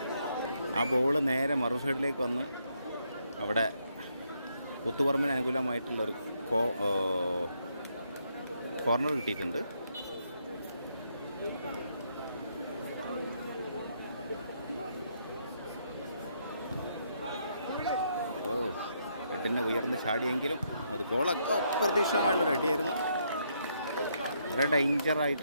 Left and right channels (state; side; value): inverted; both; correlation -0.75